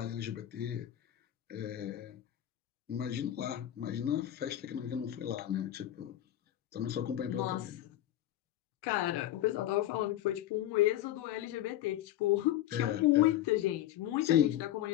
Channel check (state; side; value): quieter; right; 12.9 dB